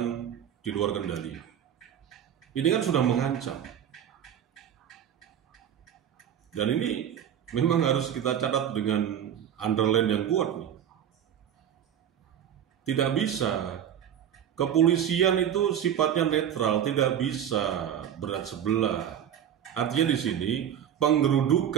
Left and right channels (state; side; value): quieter; left; 9.6 dB